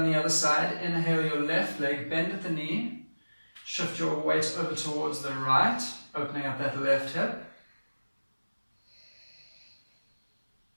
the other side. Inhale your left leg, bend at the knee. Shift your weight over towards the right, opening up that left hip.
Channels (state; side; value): inverted; both; correlation -1.00